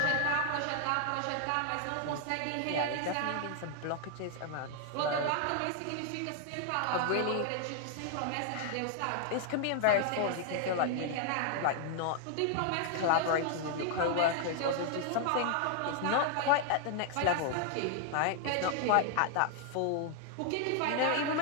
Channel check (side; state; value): both; different; correlation 0.00